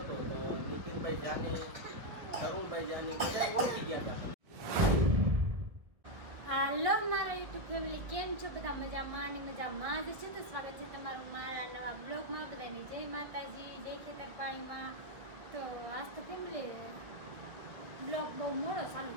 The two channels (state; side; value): late; left; 1.6 ms